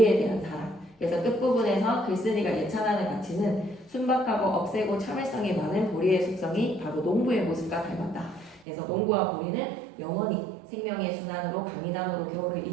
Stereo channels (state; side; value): drops out; left; at 8.7 s